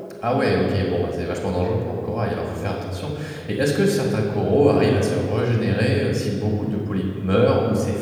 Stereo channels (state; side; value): identical; both; correlation 1.00